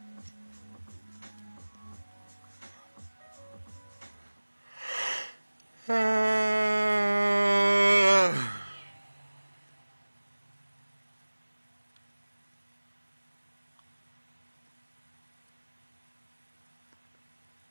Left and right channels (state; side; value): inverted; both; correlation -1.00